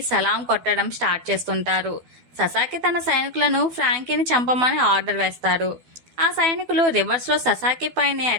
సలాం కొట్టడం స్టార్ట్ చేస్తుంటారు. ససాకి తన సైనికులను ఫ్రాంకీని చంపమని ఆర్డర్ వేస్తారు. ఆ సైనికులు రివర్స్ లో ససాకి పైనే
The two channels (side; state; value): left; late; 12 ms